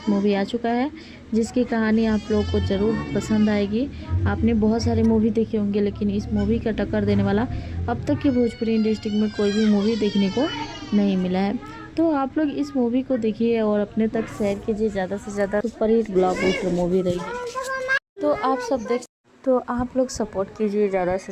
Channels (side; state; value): both; identical; correlation 1.00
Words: मूवी आ चुका है जिसकी कहानी आप लोगों को ज़रूर पसंद आएगी। आपने बहुत सारे मूवी देखे होंगे लेकिन इस मूवी का टक्कर देने वाला अब तक की भोजपुरी इंडस्ट्री में कोई भी मूवी देखने को नहीं मिला है। तो आप लोग इस मूवी को देखिए और अपने तक शेयर कीजिए। ज़्यादा से ज़्यादा सुपरहिट ब्लॉकबस्टर मूवी रही है, तो आप लोग सपोर्ट कीजिए ज़्यादा से